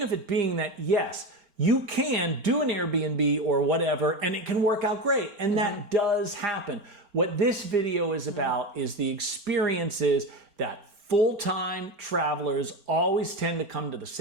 of it being that, yes, you can do an Airbnb or whatever, and it can work out great. And mm-hmm. that does happen. What this video is about is the experiences that full-time travelers always tend to come to the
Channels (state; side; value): late; left; 4.4 ms